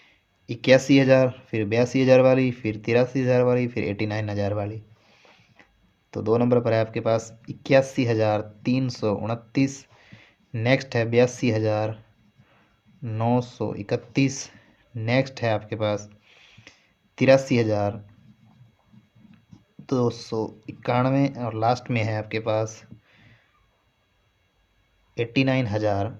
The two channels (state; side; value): identical; both; correlation 1.00